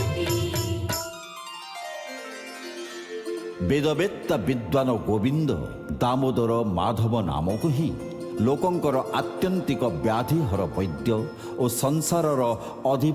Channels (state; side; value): identical; both; correlation 1.00